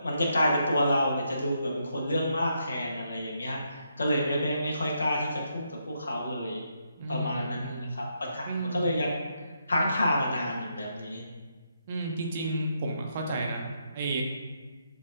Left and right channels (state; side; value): inverted; both; correlation -0.78